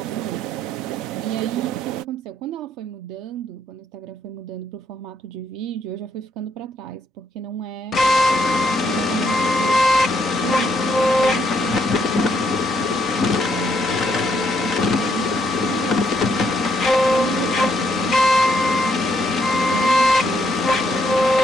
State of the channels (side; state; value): both; normal; correlation 0.74